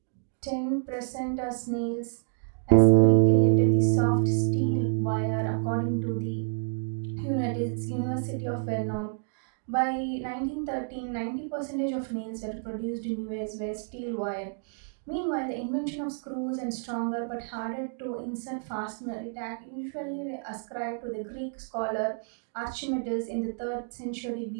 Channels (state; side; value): silent; left; 59 dB below the other